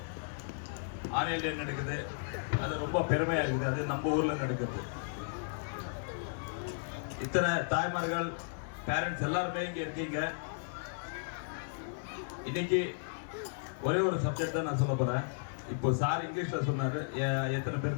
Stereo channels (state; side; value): silent; right; digital silence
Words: ஆன்லைன் டே நடக்குது. அது ரொம்ப பெருமையாக இருக்குது. அது நம்ம ஊரில் நடக்குது. இத்தனை தாய்மார்கள் பேரண்ட்ஸ் எல்லாருமே இங்கே இருக்கீங்க. இன்னைக்கு ஒரே ஒரு சப்ஜெக்ட் தான் நான் சொல்ல போகிறேன். இப்போ சார் இங்கிலீஷில் சொன்னார். எத்தனை